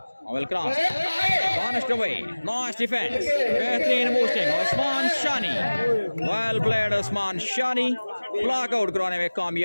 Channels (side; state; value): both; inverted; correlation -1.00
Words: well cross, punished away, nice defense, बेहतरीन boosting, Usman Shani, well played Usman Shani, block out कराने में